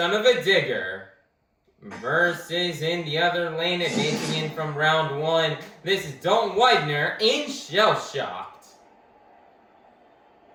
Digger. Versus in the other lane, advancing in from round 1, this is Dalton Widner in Shell Shocked.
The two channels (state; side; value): identical; both; correlation 1.00